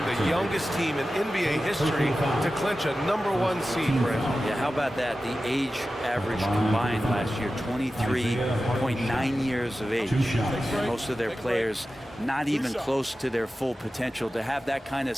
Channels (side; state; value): both; normal; correlation 0.94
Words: the youngest team in NBA history to clinch a #1 seed, Brent. Yeah, how about that? The age average combined last year, 23.9 years of age. Most of their players not even close to their full potential. To have that kind of